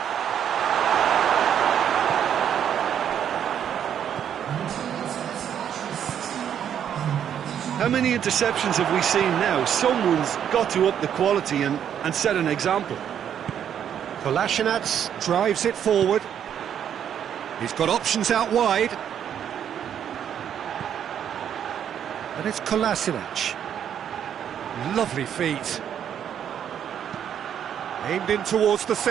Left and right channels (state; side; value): quieter; left; 9.2 dB